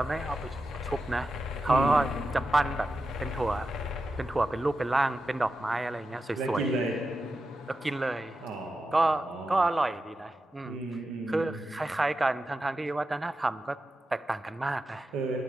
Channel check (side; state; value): both; normal; correlation 0.90